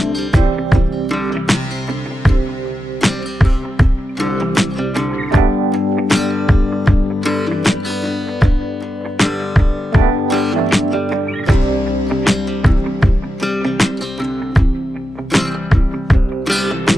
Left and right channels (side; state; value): both; normal; correlation 0.88